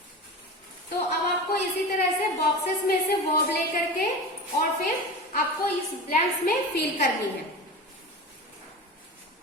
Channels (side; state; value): both; normal; correlation 0.29